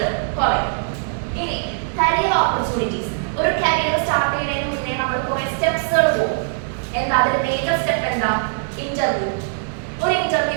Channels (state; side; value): silent; left; 65 dB below the other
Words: കുറയും. ഇനി കരിയർ ഓപ്പർച്യൂണിറ്റീസ്. ഒരു കരിയർ സ്റ്റാർട്ട് ചെയ്യുന്നതിന് മുന്നേ നമ്മൾ കുറേ സ്റ്റെപ്സുകൾ പോകും. എന്താ അതിൽ മേജർ സ്റ്റെപ്പ് എന്താ, ഇന്റർവ്യൂ. ഒരു